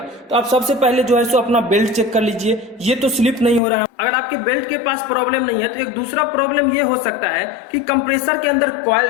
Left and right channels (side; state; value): right; drops out; at 3.6 s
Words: तो आप सबसे पहले जो है सो अपना बेल्ट चेक कर लीजिए, ये तो स्लिप नहीं हो रहा है। अगर आपके बेल्ट के पास प्रॉब्लम नहीं है तो एक दूसरा प्रॉब्लम ये हो सकता है कि कंप्रेसर के अंदर कॉइल